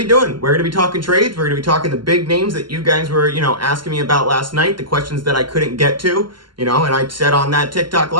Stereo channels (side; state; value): left; late; 0.72 ms